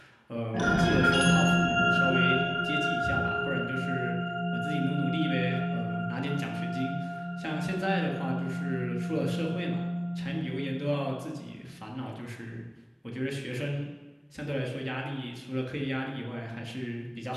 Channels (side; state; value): both; identical; correlation 1.00